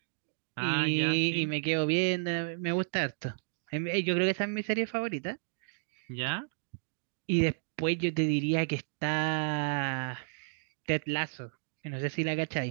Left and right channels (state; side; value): silent; left; digital silence